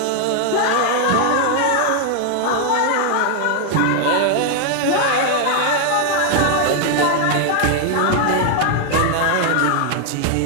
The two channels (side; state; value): both; different; correlation 0.00